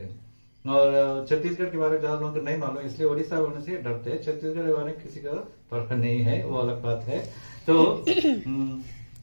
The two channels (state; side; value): inverted; both; correlation -1.00